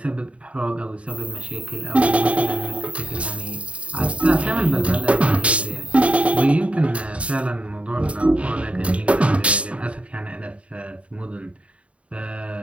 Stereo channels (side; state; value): left; late; 0.063 ms